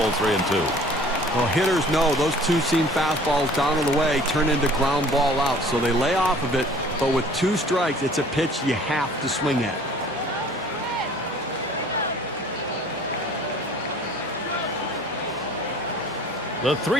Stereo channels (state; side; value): normal; both; correlation 0.50